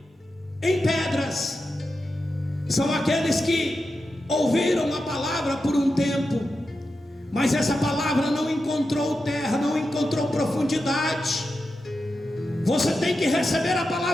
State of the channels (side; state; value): both; normal; correlation 0.89